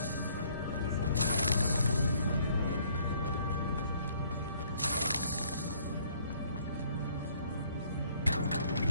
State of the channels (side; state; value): both; inverted; correlation -0.62